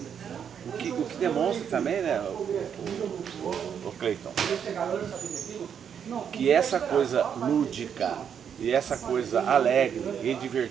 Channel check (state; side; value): quieter; left; 7.9 dB